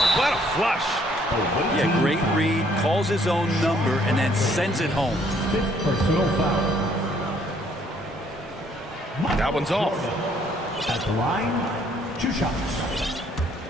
What a flush. Yeah, great read, calls his own number, and then sends it home. 5th personal foul. That one's off. At the line, 2 shots.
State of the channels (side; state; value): both; normal; correlation 0.64